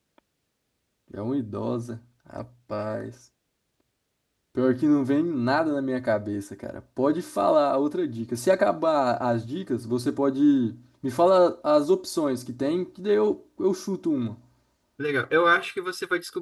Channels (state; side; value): identical; both; correlation 1.00